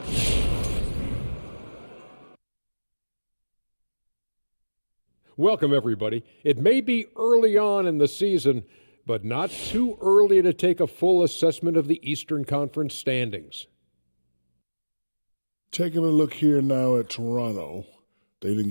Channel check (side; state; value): both; inverted; correlation -1.00